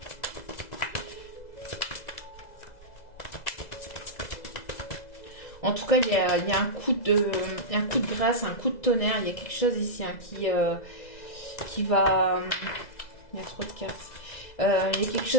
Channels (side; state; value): right; late; 2.0 ms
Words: En tout cas, il y a un coup de grâce, un coup de tonnerre. Il y a quelque chose ici hein, qui va... Il y a trop de cartes. Il y a quelque